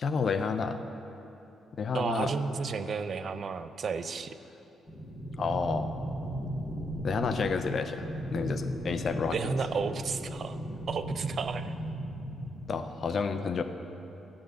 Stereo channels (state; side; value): normal; both; correlation 0.77